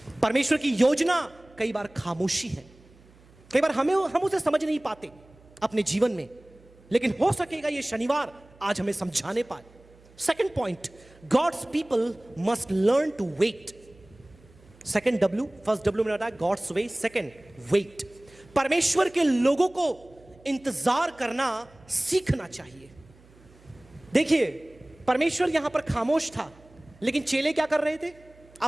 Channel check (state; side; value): noise; right; hum, 27 dB below the sound